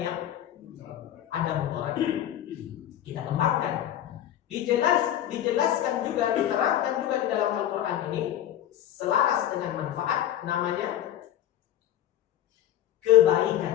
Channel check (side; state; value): right; quieter; 11.7 dB